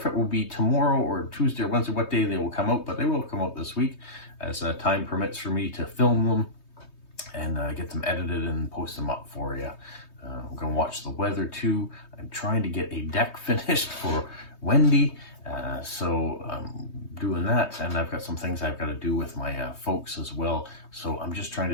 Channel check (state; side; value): late; right; 3.2 ms